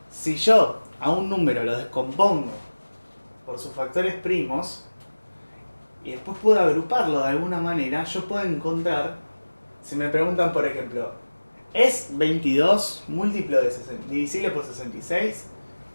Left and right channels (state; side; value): inverted; both; correlation -1.00